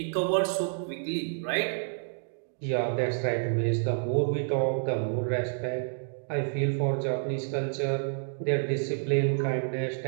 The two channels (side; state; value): left; silent; digital silence